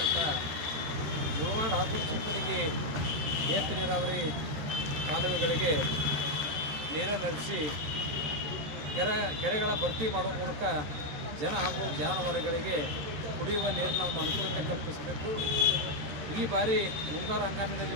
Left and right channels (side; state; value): left; late; 13 ms